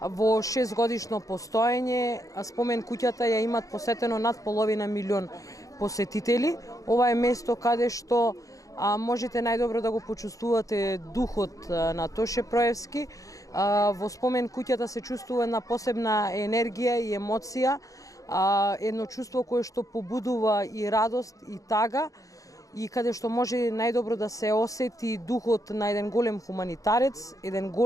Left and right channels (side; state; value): right; late; 0.16 ms